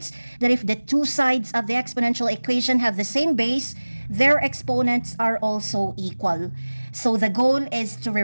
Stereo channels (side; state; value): both; inverted; correlation -1.00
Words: that if the two sides of the exponential equation have the same base, their exponents are also equal. So the goal is to